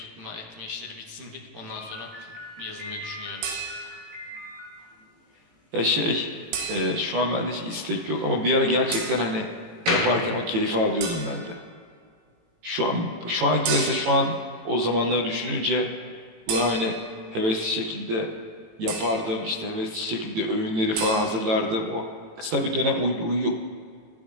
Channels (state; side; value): late; left; 18 ms